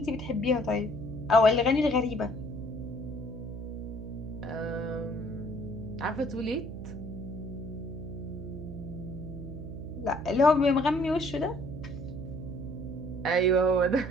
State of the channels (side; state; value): right; noise; hum, 9 dB below the sound